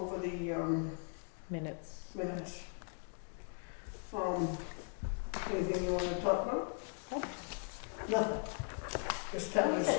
the Minutes. minutes. Anything you want to talk about? Nope. Nothing. This town is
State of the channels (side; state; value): right; silent; 52 dB below the other